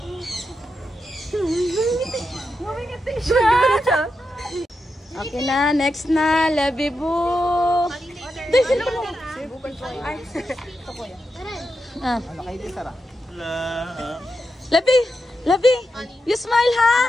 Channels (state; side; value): normal; both; correlation 0.87